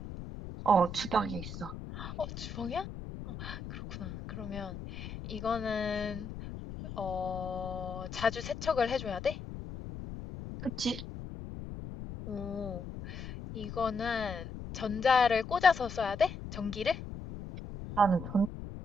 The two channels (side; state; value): left; noise; rumble, 9 dB below the sound